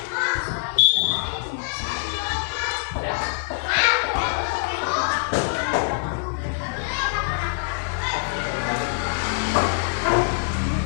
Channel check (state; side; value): silent; right; digital silence